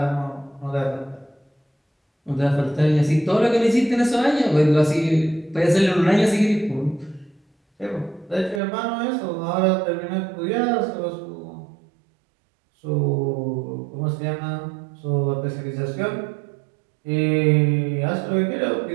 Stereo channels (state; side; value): drops out; left; at 8.6 s